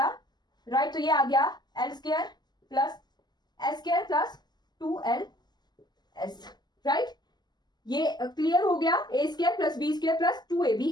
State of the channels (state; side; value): late; right; 0.21 ms